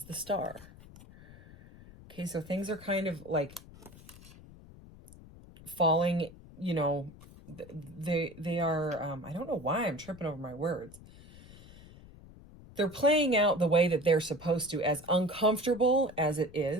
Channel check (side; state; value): left; noise; rumble, 20 dB below the sound